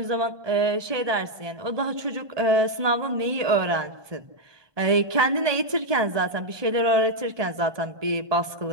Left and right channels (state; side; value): late; left; 1.2 ms